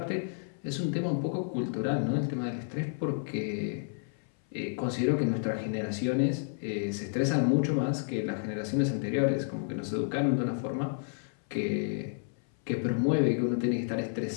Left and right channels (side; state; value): right; silent; 57 dB below the other